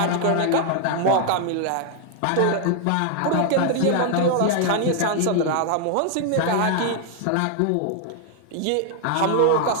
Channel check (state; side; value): different; both; correlation 0.00